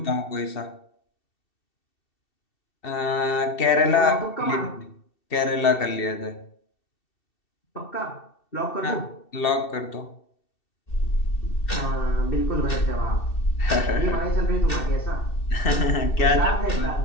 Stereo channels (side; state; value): right; late; 2.7 ms